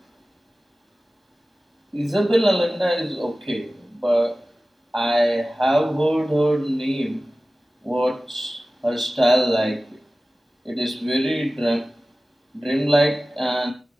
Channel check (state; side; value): normal; both; correlation 0.97